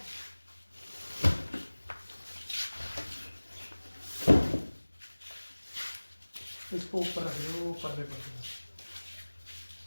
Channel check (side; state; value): both; inverted; correlation -1.00